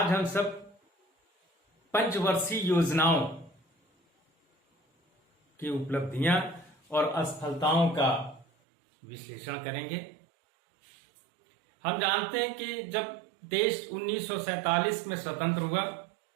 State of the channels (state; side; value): drops out; left; at 8.5 s